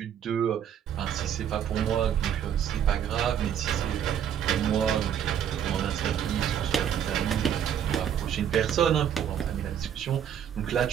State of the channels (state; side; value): quieter; left; 9.2 dB